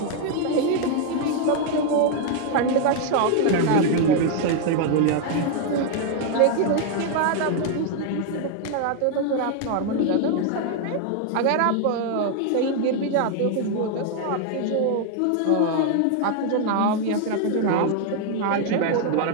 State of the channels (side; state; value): both; different; correlation 0.00